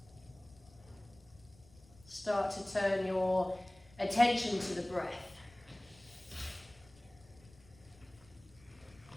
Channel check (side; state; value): left; noise; rumble, 25 dB below the sound